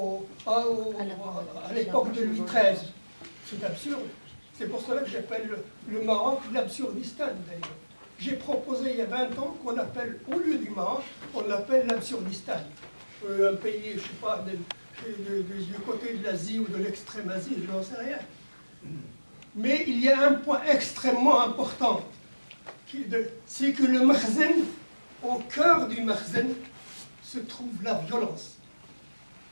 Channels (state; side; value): inverted; both; correlation -1.00